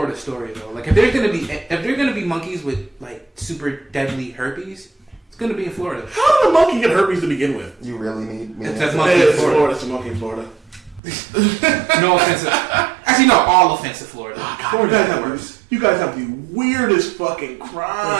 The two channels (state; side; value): drops out; left; at 11.0 s